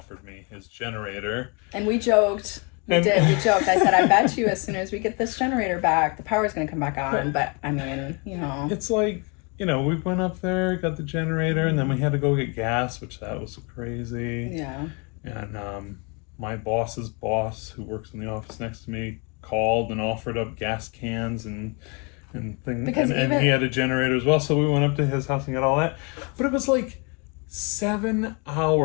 me his generator. And we joked. We joked. I said, I bet you as soon as we get this generator back, the power's going to come back on. But, I mean, It's like, we went up there, got the generator, and then we had to go get gas, which that was crazy. Yeah. And my boss's boss, who works in the office next to me, called and offered up gas cans and things. And he had a generator as well. So we went up to his house and got all that. But it was like 7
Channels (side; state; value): right; quieter; 32.6 dB